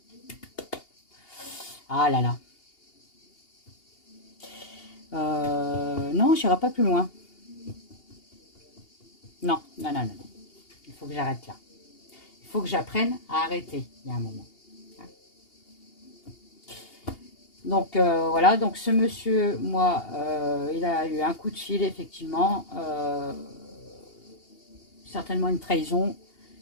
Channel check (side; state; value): right; late; 2.8 ms